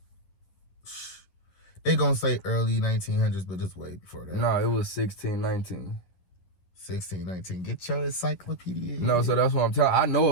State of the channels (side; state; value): right; late; 11 ms